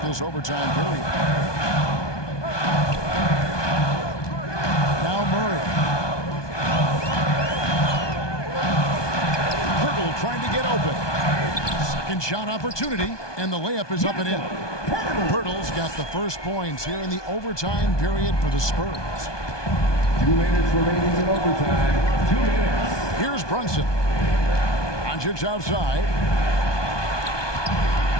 this overtime period. Now Murray. Pirtle trying to get open. Second shot opportunity, and the layup is up and in. Pirtle's got the first points here in the overtime period for the Spurs. 2 minutes remaining in overtime. 2 minutes. Here's Brunson. Doncic outside.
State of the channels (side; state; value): right; late; 1.2 ms